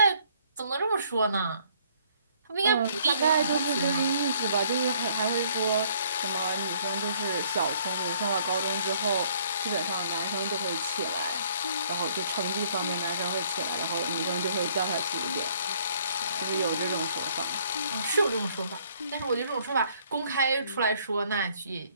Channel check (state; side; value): inverted; both; correlation -0.62